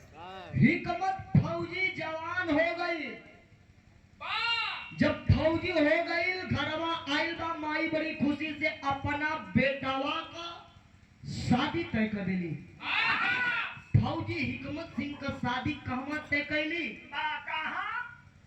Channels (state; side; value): identical; both; correlation 1.00